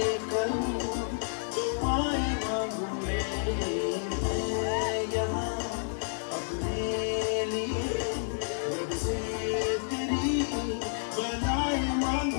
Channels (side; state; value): right; silent; 58 dB below the other